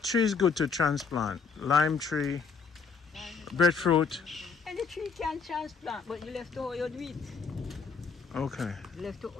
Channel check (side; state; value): right; quieter; 5.3 dB